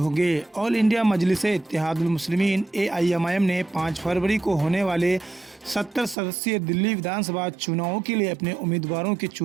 ऑल इंडिया मजलिस इत्तेहादुल मुस्लिमीन AIMIM ने 5 फरवरी को होने वाले 70 सदस्यीय दिल्ली विधानसभा चुनाव के लिए अपने उम्मीदवारों के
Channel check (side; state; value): left; drops out; at 6.2 s